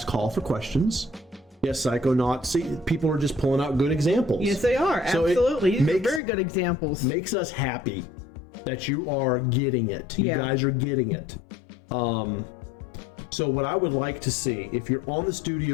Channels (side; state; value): right; drops out; at 6.2 s